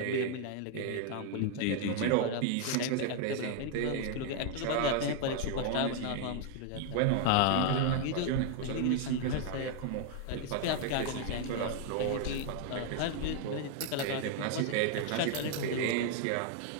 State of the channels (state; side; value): different; both; correlation 0.00